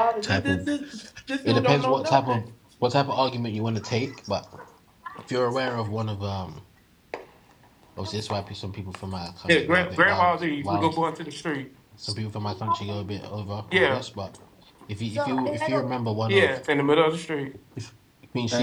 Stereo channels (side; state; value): both; identical; correlation 1.00